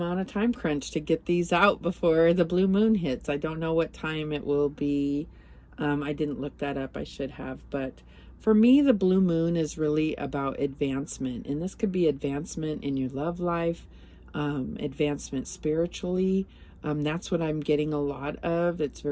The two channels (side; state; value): both; identical; correlation 1.00